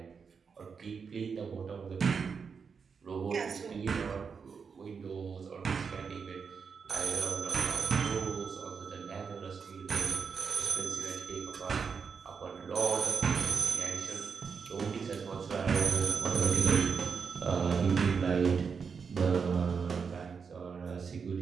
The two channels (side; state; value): left; quieter; 5.9 dB